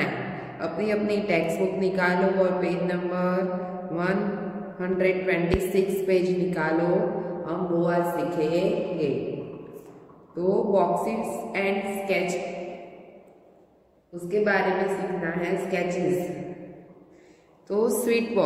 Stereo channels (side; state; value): both; identical; correlation 1.00